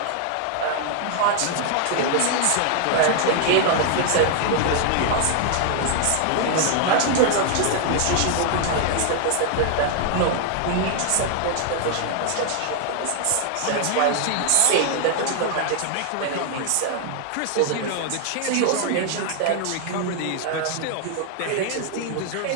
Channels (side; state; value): both; different; correlation 0.00